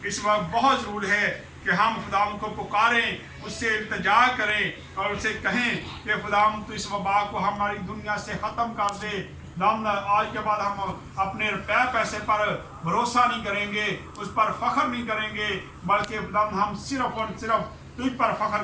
इस वक्त बहुत ज़रूरी है कि हम खुदा को पुकारें, उससे इल्तिजा करें और उससे कहें कि खुदा तो इस वबा को हमारी दुनिया से ख़त्म कर दे। आज के बाद हम अपने रुपये पैसे पर भरोसा नहीं करेंगे, उस पर फ़ख्र नहीं करेंगे, बल्कि हम सिर्फ और सिर्फ तुझ पर फ़ख्र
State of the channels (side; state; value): both; identical; correlation 1.00